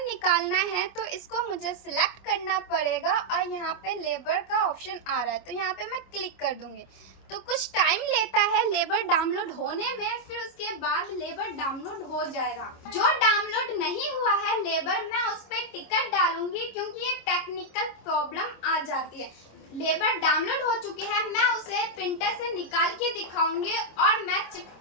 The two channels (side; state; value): right; late; 25 ms